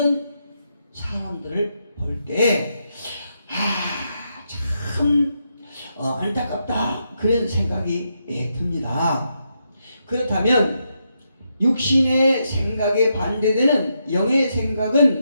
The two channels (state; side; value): inverted; both; correlation -0.82